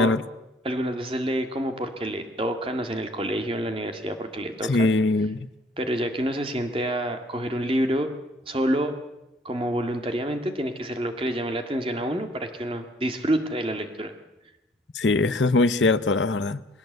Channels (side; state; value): both; normal; correlation 0.59